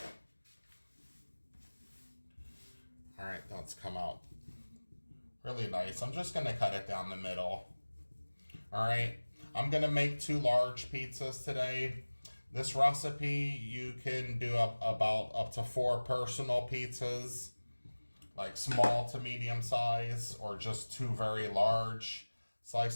All right, that's come out really nice. I'm just gonna cut it down the middle. All right, I'm gonna make 2 large pizzas today. This recipe, you can do about up to 4 personal pizzas, like small to medium size, or just 2 very large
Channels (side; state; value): both; inverted; correlation -1.00